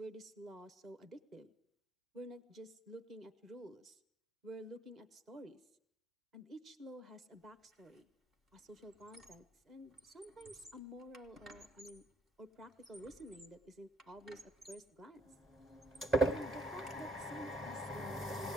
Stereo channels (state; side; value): normal; both; correlation 0.68